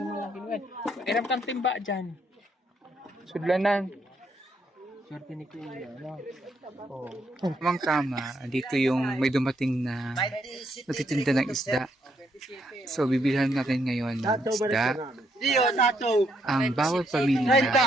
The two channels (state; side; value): normal; both; correlation 0.74